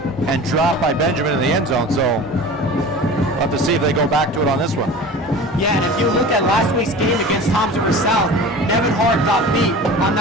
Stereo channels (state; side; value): normal; both; correlation 0.37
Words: and dropped by Benjamin in the end zone. So we'll have to see if they go back to it on this one. Yeah, and if you look at last week's game against Toms River South, Nevin Hart got beat on